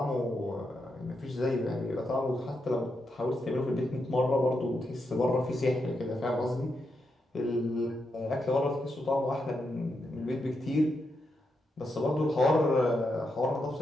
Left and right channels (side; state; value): both; normal; correlation 0.84